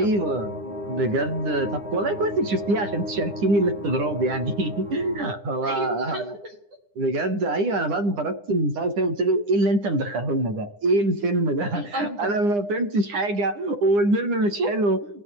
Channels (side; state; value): left; late; 9.8 ms